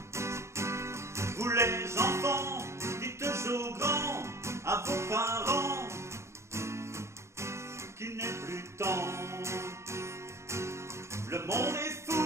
Vous les enfants, dites aux grands, à vos parents, qu'il n'est plus temps. Le monde est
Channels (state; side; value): late; left; 0.13 ms